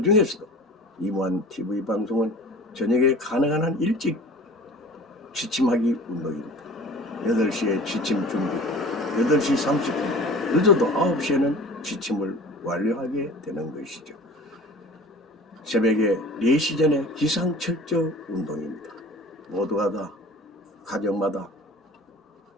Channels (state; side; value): normal; both; correlation 0.41